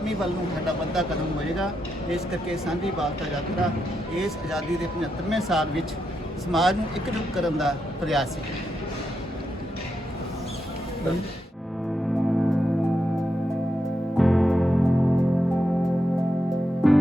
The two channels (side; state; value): both; normal; correlation 0.84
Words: ਵੱਲ ਨੂੰ ਸਾਡਾ ਵੱਡਾ ਕਦਮ ਹੋਏਗਾ। ਇਸ ਕਰਕੇ ਸਾਂਝੀ ਵਾਲਤਾ ਯਾਤਰਾ ਇਸ ਆਜ਼ਾਦੀ ਦੇ 75ਵੇਂ ਸਾਲ ਵਿੱਚ ਸਮਾਜ ਨੂੰ ਇਕਜੁੱਟ ਕਰਨ ਦਾ ਪ੍ਰਯਾਸ ਹੈ।